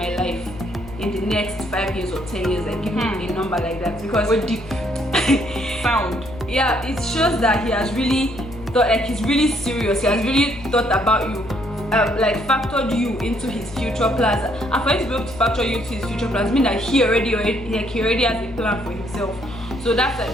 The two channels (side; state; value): left; noise; hum, 16 dB below the sound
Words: life in the next 5 years or 10 years? Like give him a number like that, because we're deep sound. Yeah, it shows that he has really thought, like he's really serious. He has really thought about you. Like factored you into his future plans, and for him to be able to factor you into his future plans means that he already has a plan for himself. So that's